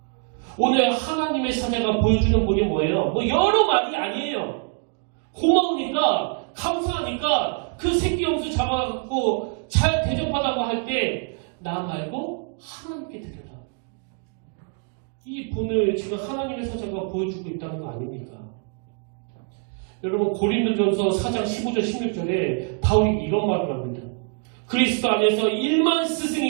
오늘 하나님의 사자가 보여주는 분이 뭐예요? 뭐 여러 말이 아니에요. 고마우니까, 감사하니까 그 새끼 염소 잡아갖고 잘 대접하다고 할 때 나 말고 하나님께 드려라. 이 분을 지금 하나님의 사자가 보여주고 있다는 거 아닙니까? 여러분, 고린도전서 4장 15절 16절에 바울이 이런 말을 합니다. 그리스도 안에서 1만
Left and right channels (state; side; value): quieter; left; 38.9 dB